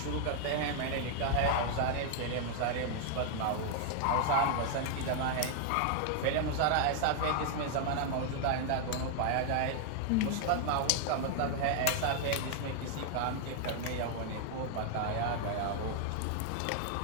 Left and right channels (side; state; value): both; different; correlation 0.00